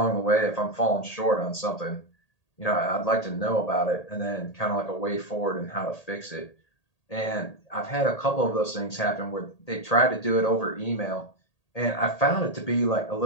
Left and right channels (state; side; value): late; right; 1.8 ms